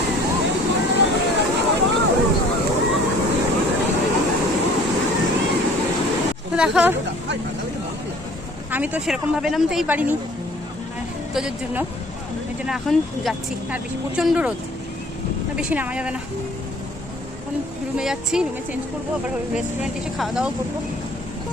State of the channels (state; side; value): normal; both; correlation 0.52